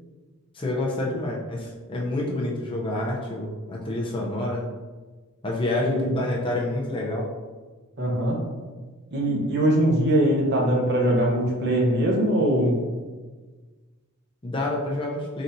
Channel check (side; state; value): both; normal; correlation 0.47